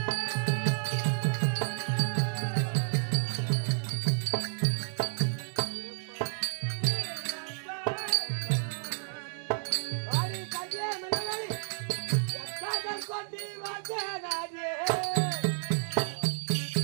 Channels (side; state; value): left; silent; digital silence